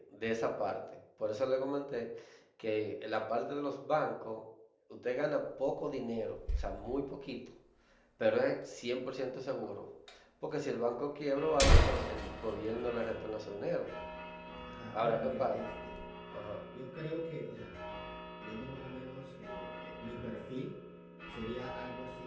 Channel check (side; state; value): both; identical; correlation 1.00